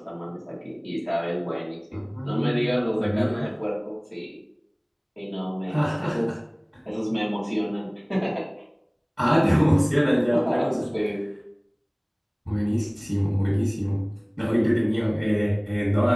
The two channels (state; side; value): identical; both; correlation 1.00